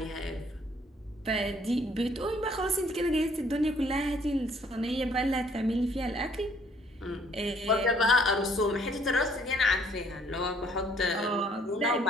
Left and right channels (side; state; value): both; normal; correlation 0.63